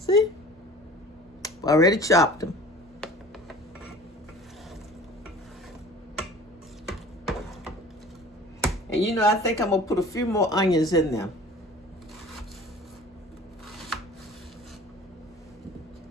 I already chopped them. And I think I'm going to put a few more onions in there.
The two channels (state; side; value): normal; both; correlation 0.44